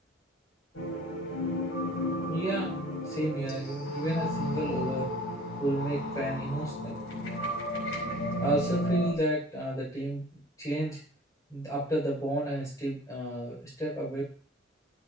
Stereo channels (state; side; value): normal; both; correlation 0.47